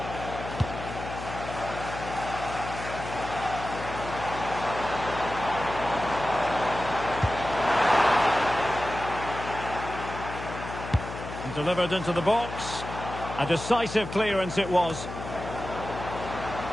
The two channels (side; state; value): left; noise; hum, 9 dB below the sound